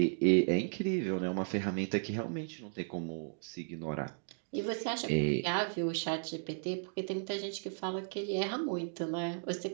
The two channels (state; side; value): silent; left; digital silence